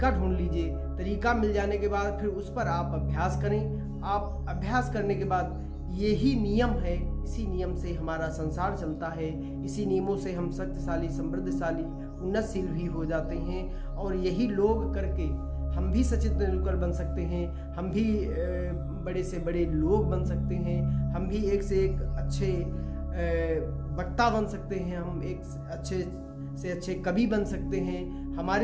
ढूंढ लीजिए। तरीका मिल जाने के बाद फिर उस पर आप अभ्यास करें। आप अभ्यास करने के बाद यही नियम है, इसी नियम से हमारा संसार चलता है, इसी नियमों से हम शक्तिशाली, समृद्धशाली, उन्नतशील भी हो जाते हैं और यही लोग करके हम भी सचिन तेंदुलकर बन सकते हैं, हम भी बड़े से बड़े लोग बन सकते हैं, हम भी एक से एक अच्छे वक्ता बन सकते हैं, हम एक अच्छे से अच्छे कवि बन सकते हैं।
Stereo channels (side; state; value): both; identical; correlation 1.00